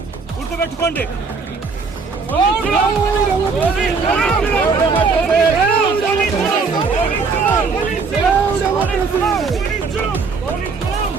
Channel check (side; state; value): left; quieter; 4.8 dB